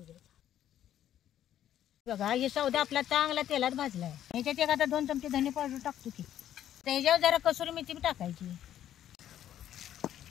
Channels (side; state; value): right; quieter; 11.2 dB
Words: घ्यायचा. बघा ही सौदा आपला चांगला तेलात भाजलाय. ह्याच्यात एक आता 2 चमचे धने पावडर टाकतो की. त्याच्यावर जरा कसुरी मेथी टाकायची.